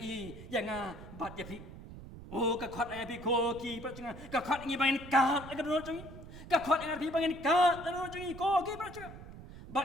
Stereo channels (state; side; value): noise; right; rumble, 14 dB below the sound